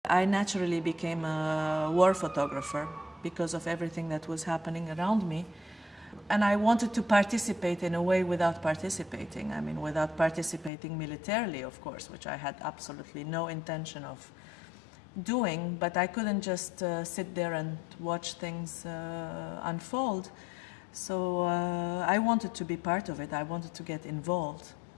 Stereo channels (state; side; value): drops out; right; at 10.7 s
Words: I naturally became a war photographer because of everything that was happening around me. And I wanted to participate in a way without participating. I mean, without participating militarily, of course, which I had absolutely no intention of doing, but I couldn't just sit there and watch things unfold. So I wanted to be part of it. I wanted to get involved.